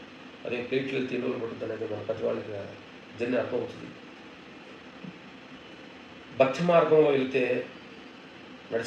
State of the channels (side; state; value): both; identical; correlation 1.00